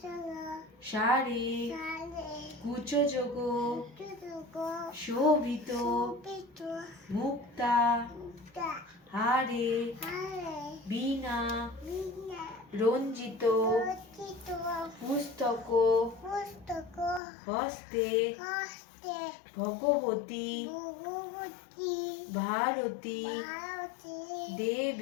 সারে কুচযোগ শোভিত মুক্তা হারে বীণা রঞ্জিত পুস্তক হস্তে ভগবতী ভারতী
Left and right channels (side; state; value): right; drops out; at 17.2 s